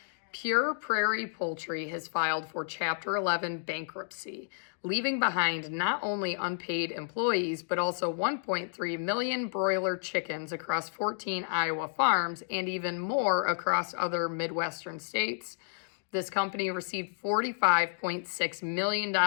Pure Prairie Poultry has filed for Chapter 11 bankruptcy, leaving behind not only unpaid employees, but also 1.3 million broiler chickens across 14 Iowa farms and even more across other Midwestern states. This company received $45.6 million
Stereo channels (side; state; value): right; silent; digital silence